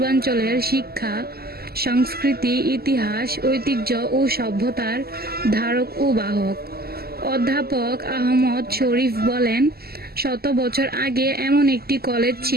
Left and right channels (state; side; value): late; left; 0.45 ms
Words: শিক্ষা, সংস্কৃতি, ইতিহাস, ঐতিহ্য ও সভ্যতার ধারক ও বাহক। অধ্যাপক আহমদ শরীফ বলেন, 100 বছর আগে এমন একটি কলেজ